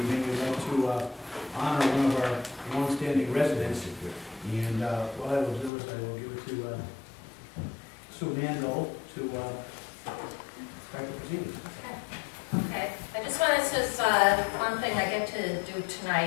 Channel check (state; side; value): drops out; right; at 5.7 s